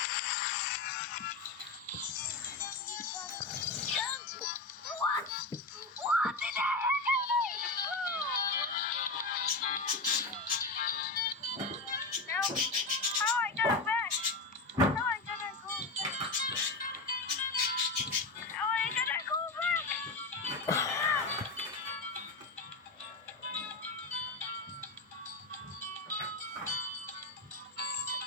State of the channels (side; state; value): right; quieter; 3.4 dB